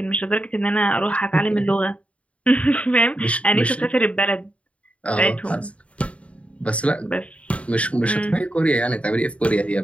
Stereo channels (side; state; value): right; late; 0.064 ms